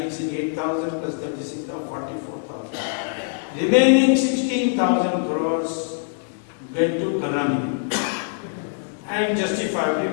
it 8,000 plus 36,000, 44,000. Remaining 16,000 crores went to Karnamini. And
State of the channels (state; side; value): silent; right; 63 dB below the other